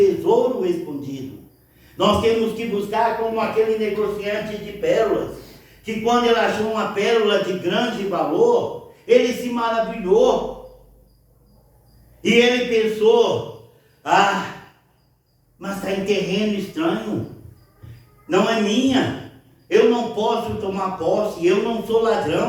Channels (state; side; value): identical; both; correlation 1.00